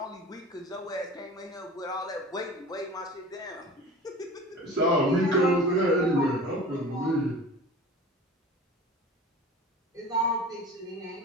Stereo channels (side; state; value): both; normal; correlation 0.38